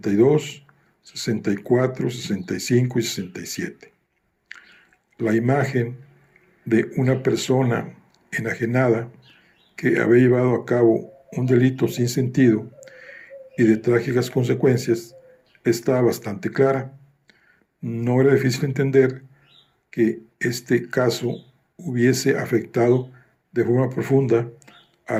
64, 65 y 67. La imagen de una persona enajenada que había llevado a cabo un delito sin sentido y de trágicas consecuencias estaba bastante clara. No era difícil entender que este caso hubiese afectado de forma profunda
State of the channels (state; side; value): identical; both; correlation 1.00